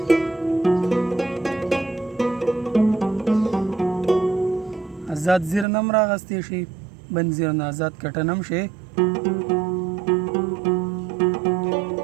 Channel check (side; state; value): left; drops out; at 5.7 s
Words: آزاد زیر نه هم راغستی شي بند زیر نه آزاد کټن هم شي